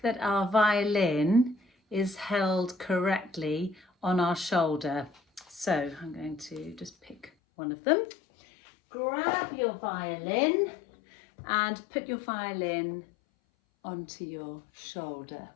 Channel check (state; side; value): drops out; right; at 7.3 s